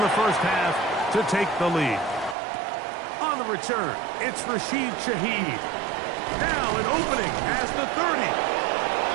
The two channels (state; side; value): drops out; left; at 2.4 s